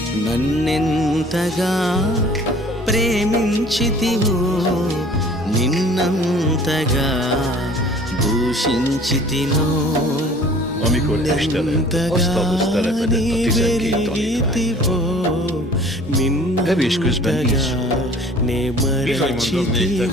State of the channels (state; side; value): normal; both; correlation 0.50